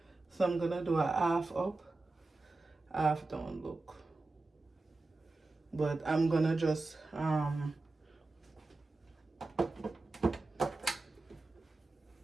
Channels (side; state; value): left; quieter; 3.3 dB